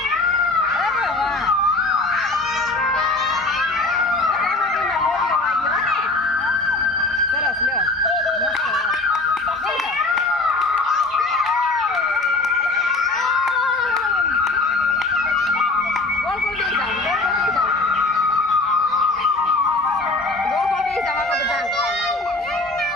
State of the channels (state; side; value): quieter; right; 3.1 dB